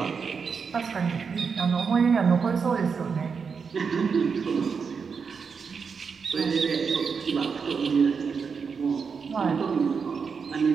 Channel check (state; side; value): quieter; left; 5.7 dB